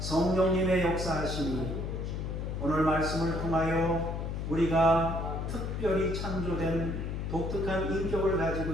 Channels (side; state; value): left; noise; hum, 3 dB below the sound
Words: 역사하심이 오늘 말씀을 통하여 우리가 특별히 창조된 독특한 인격을 가지고